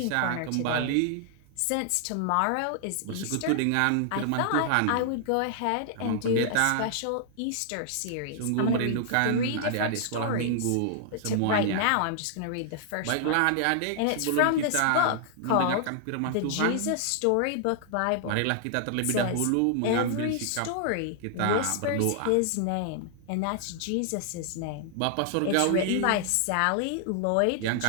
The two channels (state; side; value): different; both; correlation 0.00